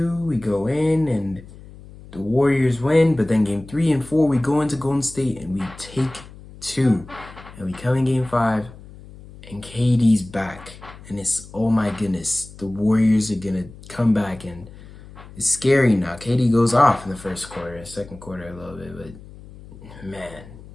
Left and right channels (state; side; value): noise; left; hum, 18 dB below the sound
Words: we go in, and the Warriors win. But then game 3 and 4, we go into Golden State, and we take 2. And we come in game 5, and KD's back. And it's, oh my goodness, the Warriors are going to come back, and it's scary now. KD goes off in the first quarter, second quarter a little bit, but man,